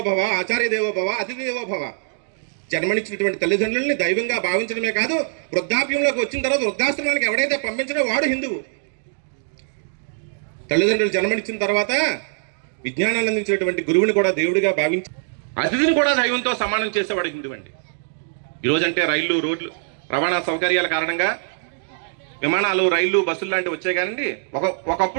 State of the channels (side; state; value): left; silent; digital silence